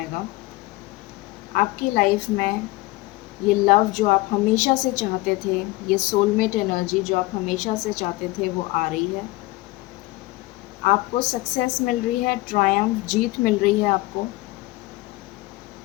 आपकी लाइफ में ये लव जो आप हमेशा से चाहते थे, ये सोलमेट एनर्जी जो आप हमेशा से चाहते थे, वो आ रही है। आपको सक्सेस मिल रही है, ट्रायम्फ, जीत मिल रही है आपको।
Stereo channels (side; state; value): right; quieter; 20.7 dB